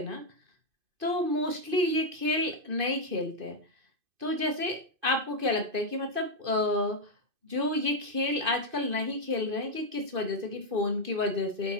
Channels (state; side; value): late; left; 2.5 ms